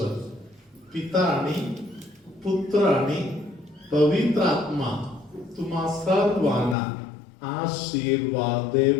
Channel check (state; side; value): drops out; right; at 6.8 s